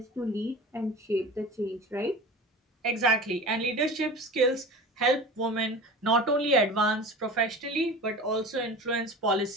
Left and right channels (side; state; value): both; normal; correlation 0.35